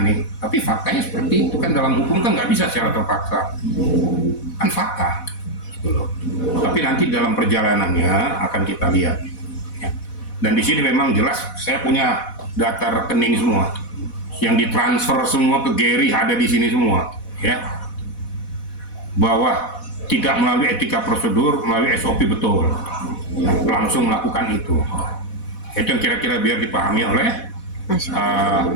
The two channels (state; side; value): late; right; 4.1 ms